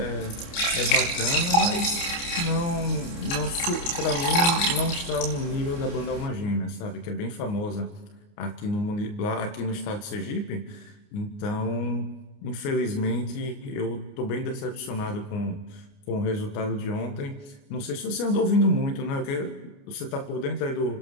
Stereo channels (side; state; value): right; late; 29 ms